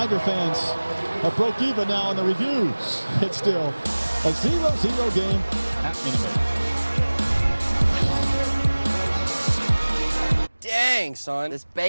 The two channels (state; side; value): inverted; both; correlation -1.00